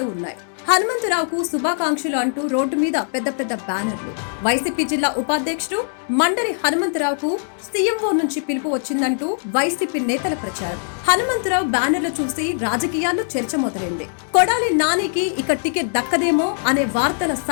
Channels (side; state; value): right; silent; 65 dB below the other